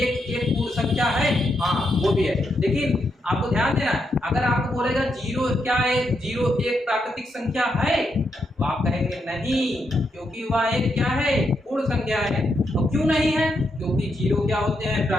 1 पूर्ण संख्या है? हाँ वो भी है। लेकिन आपको ध्यान देना है, अगर आपको बोलेगा 0 क्या है, 0 1 प्राकृतिक संख्या है तो आप कहेंगे नहीं, क्योंकि वह एक क्या है? पूर्ण संख्या है। और क्यों नहीं है? क्योंकि 0 क्या होते हैं?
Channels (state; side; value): normal; both; correlation 0.81